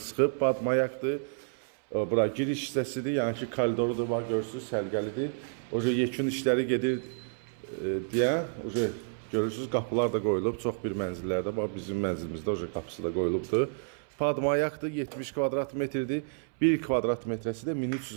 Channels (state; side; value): silent; left; 58 dB below the other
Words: çıxıb, Badmayaqdır. Bura giriş hissəsidir, yəni ki, koridorudur, var, görürsünüz, sərgəlidir. Oca yekun işləri gedir deyə, oca görürsünüz, qapılar da qoyulub, çox bir mənzillərdə, bax bizim mənzilimizdə oca qapısı da qoyulubdur. Padmayaqdır, 70 kvadrat metrdir. 1 kvadrat metrəsi də